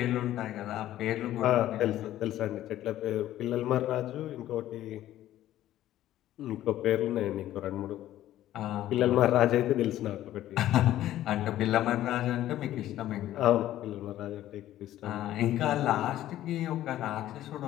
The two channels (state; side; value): quieter; right; 13.4 dB